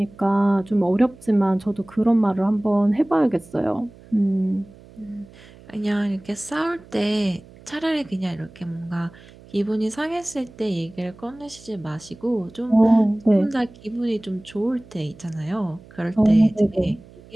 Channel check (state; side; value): noise; right; hum, 22 dB below the sound